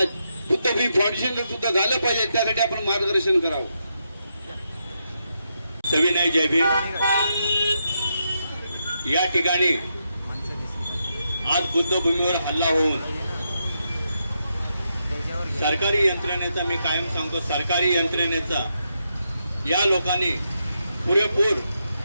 बुद्धभूमी फाउंडेशनला सुद्धा झालं पाहिजे, त्यासाठी आपण मार्गदर्शन करावं. सविनय जय भीम. या ठिकाणी आज बुद्धभूमीवर हल्ला होऊन सरकारी यंत्रणेचा, मी कायम सांगतो सरकारी यंत्रणेचा या लोकांनी पुरेपूर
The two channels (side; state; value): both; inverted; correlation -0.83